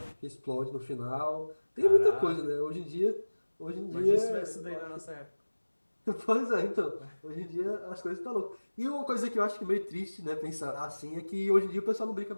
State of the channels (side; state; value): both; inverted; correlation -1.00